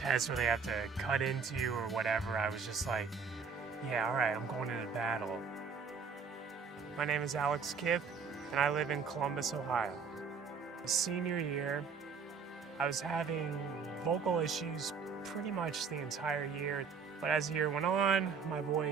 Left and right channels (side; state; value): left; quieter; 5.7 dB